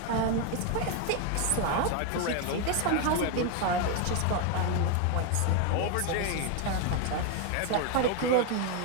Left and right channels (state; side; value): different; both; correlation 0.01